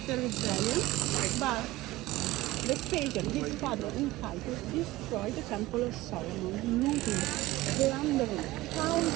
the rebellion, but Vespasian, his father, in Titus, destroyed the Temple of Solomon, looting, plundering, pounds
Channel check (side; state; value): left; quieter; 17.9 dB